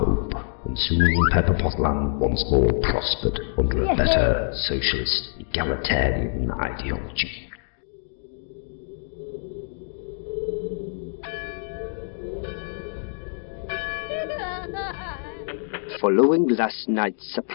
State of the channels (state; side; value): silent; right; digital silence